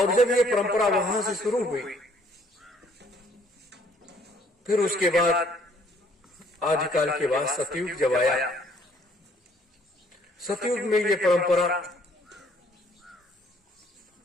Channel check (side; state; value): both; normal; correlation 0.62